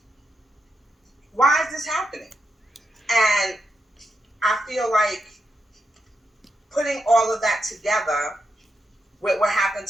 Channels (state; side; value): normal; both; correlation 0.84